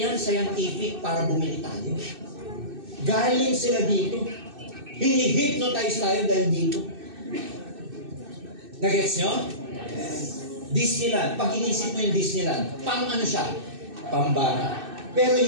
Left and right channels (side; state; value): left; late; 2.6 ms